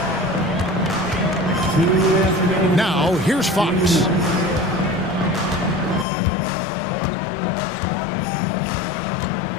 Now, here's Fox.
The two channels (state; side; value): drops out; right; at 6.1 s